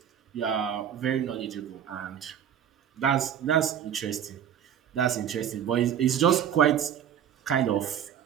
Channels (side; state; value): left; quieter; 9.4 dB